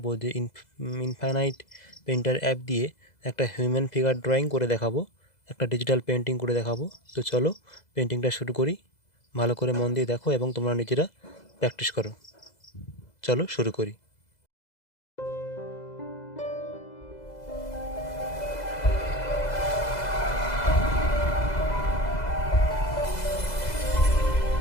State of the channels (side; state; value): right; late; 2.0 ms